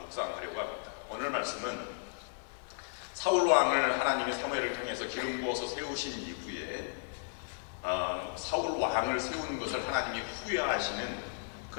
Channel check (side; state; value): right; silent; 55 dB below the other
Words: 합니다. 오늘 말씀은 사울 왕을 하나님이 사무엘을 통해서 기름 부어서 세우신 이후에 사울 왕을 세우는 것을 하나님이 후회하시는